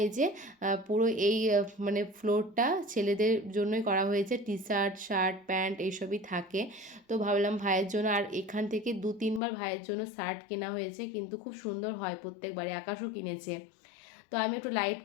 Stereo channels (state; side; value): drops out; right; at 9.4 s